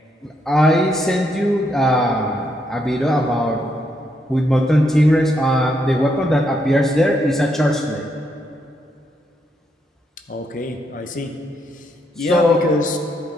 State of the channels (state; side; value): normal; both; correlation 0.77